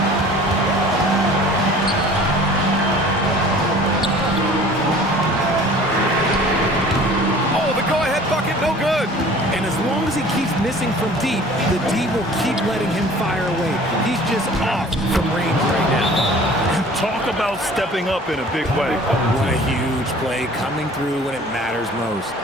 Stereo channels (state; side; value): normal; both; correlation 0.47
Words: Oh, the go-ahead bucket, no good. And as long as he keeps missing from deep, the D will keep letting him fire away. He's just off from range right now. Talk about stepping up in a big way. What a huge play coming through when it matters most.